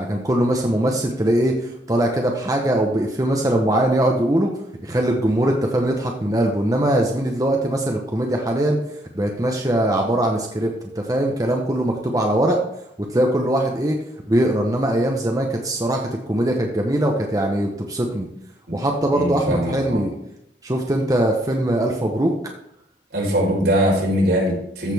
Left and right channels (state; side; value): normal; both; correlation 0.70